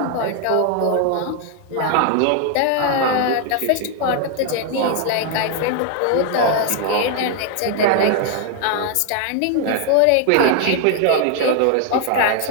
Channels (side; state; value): both; different; correlation 0.00